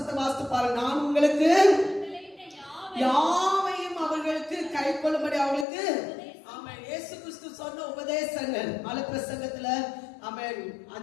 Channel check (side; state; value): right; drops out; at 5.7 s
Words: வாசித்து பாருங்க. நான் உங்களுக்கு யாவையும் அவர்களுக்கு கை கொள்ளும்படி அவர்களுக்கு, ஆமென், இயேசு கிறிஸ்து சொன்ன உபதேசங்கள் மலை பிரசங்கத்துல, ஆமென்,